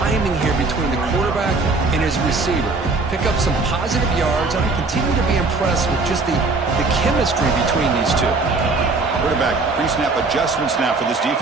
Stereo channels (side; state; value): left; quieter; 3.7 dB